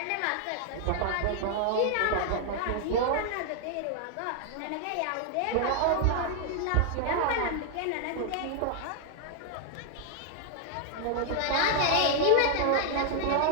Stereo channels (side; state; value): both; different; correlation 0.00